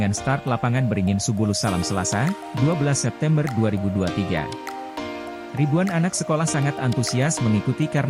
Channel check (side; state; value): both; identical; correlation 1.00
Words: start lapangan Beringin Subulu Salam Selasa, 12 September 2023. Ribuan anak sekolah sangat antusias mengikuti